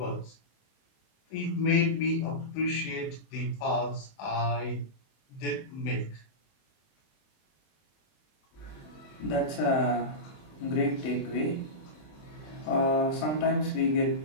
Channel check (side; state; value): right; late; 21 ms